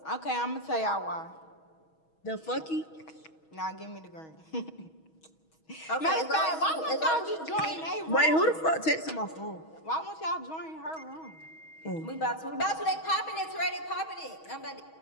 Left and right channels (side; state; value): right; late; 6.3 ms